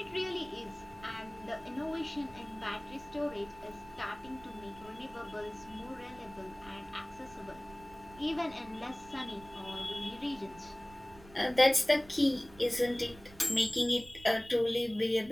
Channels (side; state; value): right; noise; rumble, 21 dB below the sound